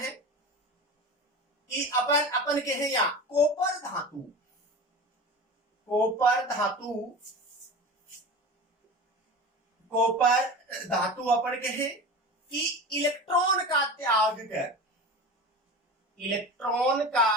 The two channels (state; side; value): normal; both; correlation 0.31